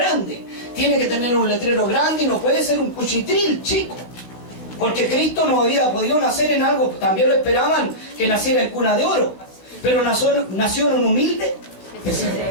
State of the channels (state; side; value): late; right; 16 ms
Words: Tiene que tener un letrero grande y no puede ser un cuchitril chico. Porque Cristo no había podido nacer en algo, también lo esperaban que naciera en cuna de oro. Pero nació en un humilde.